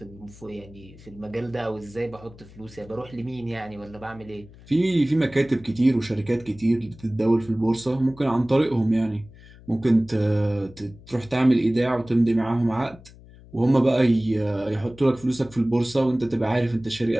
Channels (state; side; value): noise; left; hum, 21 dB below the sound